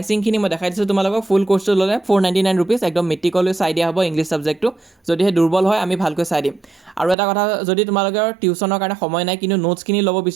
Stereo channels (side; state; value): left; drops out; at 7.2 s